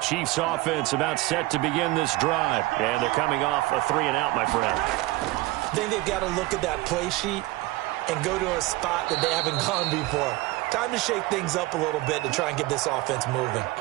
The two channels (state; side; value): quieter; left; 19.4 dB